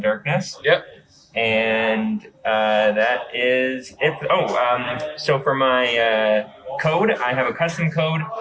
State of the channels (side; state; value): both; identical; correlation 1.00